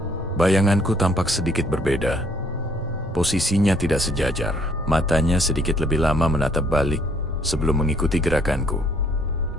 bayanganku tampak sedikit berbeda. Posisinya tidak sejajar. Matanya sedikit lebih lama menatap balik sebelum mengikuti gerakanku.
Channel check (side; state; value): both; normal; correlation 0.64